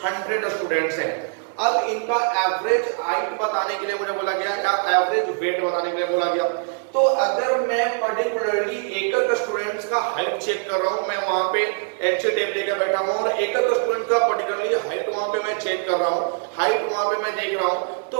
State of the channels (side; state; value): left; silent; 59 dB below the other